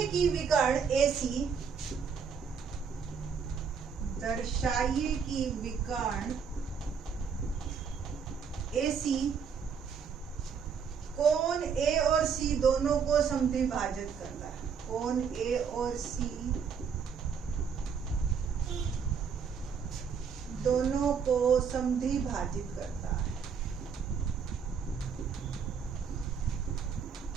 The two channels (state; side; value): quieter; left; 6.4 dB